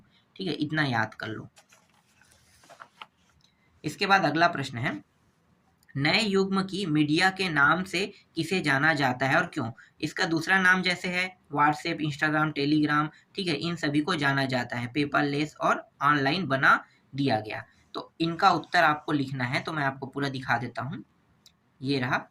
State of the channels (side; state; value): both; identical; correlation 1.00